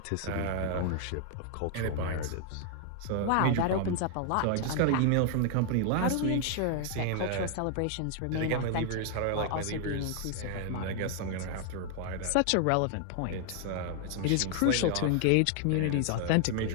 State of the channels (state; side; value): different; both; correlation 0.00